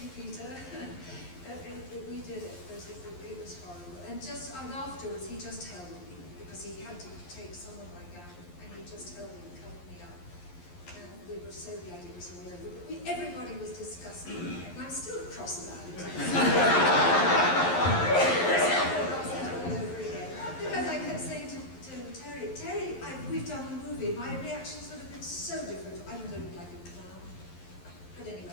you, Peter. We did it, but it was horrible. And afterwards, he just held me, because he had to take some of my gown, and he just held me and covered me up. And we were so glad it was all over. But everybody was disgusted about it. And I'm still cross about it. all over again. Because I kept saying to Terry, we've done the movie. My reactions would have been so different. I would have looked like a clown. But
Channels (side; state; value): right; late; 11 ms